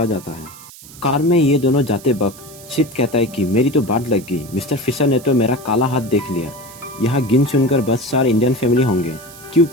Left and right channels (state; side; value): noise; right; hiss, 19 dB below the sound